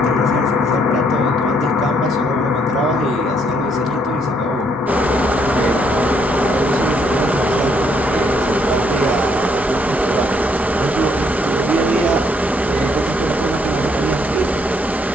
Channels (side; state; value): both; normal; correlation 0.70